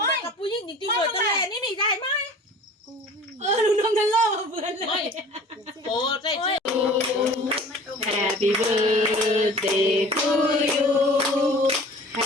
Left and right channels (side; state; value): both; normal; correlation 0.45